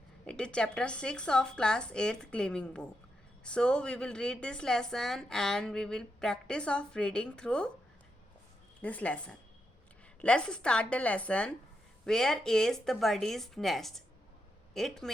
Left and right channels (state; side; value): normal; both; correlation 0.83